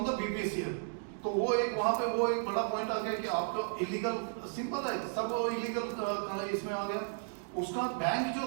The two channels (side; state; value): left; silent; digital silence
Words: द बीपीसीएल। तो वो एक वहां पे वो एक बड़ा पॉइंट आ गया कि आपका इलीगल, सिंपल है सब इलीगल इसमें आ गया। उसका बैंक जो